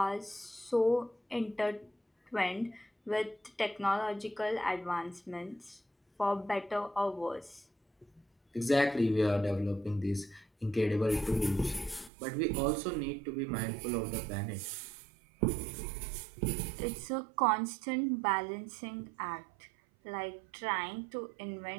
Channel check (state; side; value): drops out; left; at 12.1 s